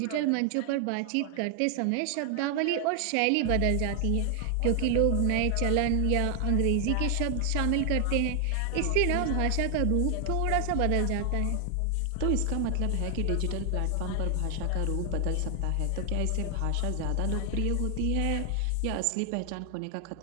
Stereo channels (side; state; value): both; different; correlation 0.00